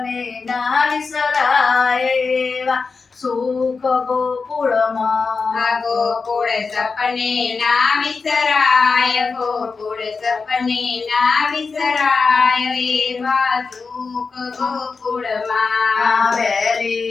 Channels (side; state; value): right; quieter; 4.6 dB